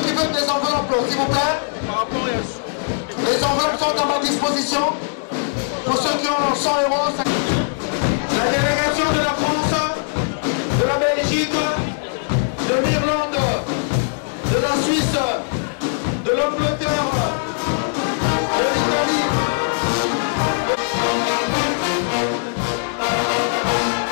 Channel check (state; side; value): silent; right; digital silence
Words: veulent des enveloppes, s'il vous plaît. Les enveloppes sont à ma disposition. Pour ceux qui ont 100 €. La délégation de la France, de la Belgique, de l'Irlande, de la Suisse, de l'Angleterre, de l'Italie.